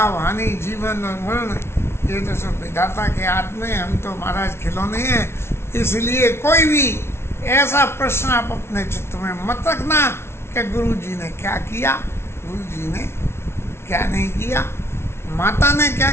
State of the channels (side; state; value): right; late; 0.12 ms